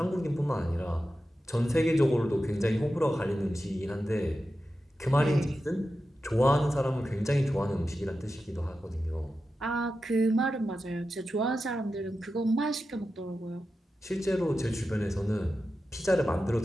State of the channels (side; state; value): both; normal; correlation 0.91